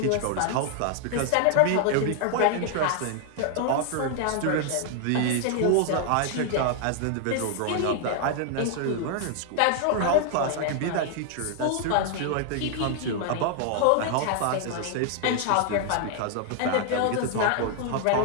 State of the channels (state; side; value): different; both; correlation 0.00